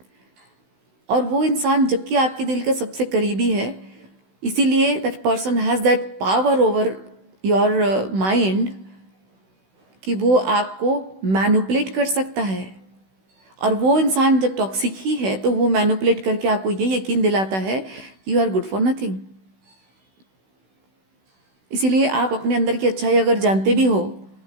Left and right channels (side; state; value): left; late; 16 ms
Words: और वो इंसान जबकि आपके दिल का सबसे करीबी है, इसीलिए that person has that power over your mind कि वो आपको मैनिपुलेट कर सकता है और वो इंसान जब टॉक्सिक ही है तो वो मैनिपुलेट करके आपको ये यकीन दिलाता है कि you are good for nothing. इसीलिए आप अपने अंदर की अच्छाई अगर जानते भी हो